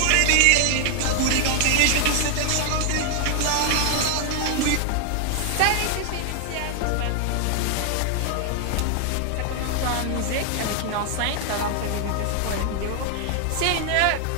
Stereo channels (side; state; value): both; different; correlation 0.00